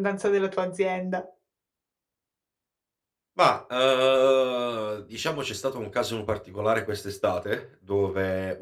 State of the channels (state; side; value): identical; both; correlation 1.00